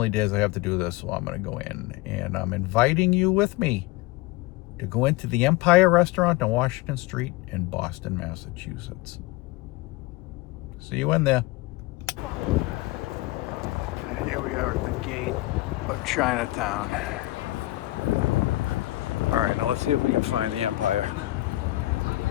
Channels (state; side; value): quieter; right; 18.7 dB